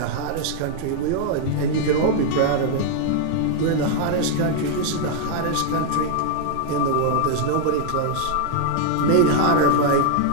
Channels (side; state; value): both; different; correlation 0.00